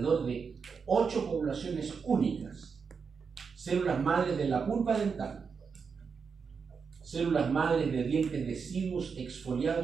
de 8 poblaciones únicas. Células madres de la pulpa dental, células madres de dientes deciduos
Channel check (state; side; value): quieter; left; 5.7 dB